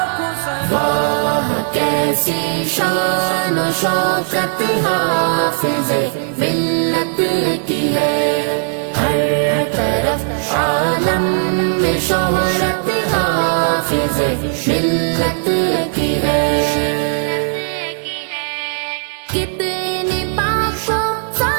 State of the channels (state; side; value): silent; left; 55 dB below the other